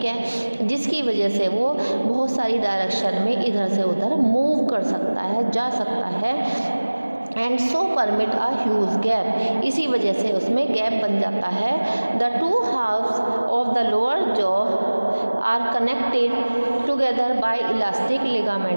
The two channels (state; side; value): inverted; both; correlation -1.00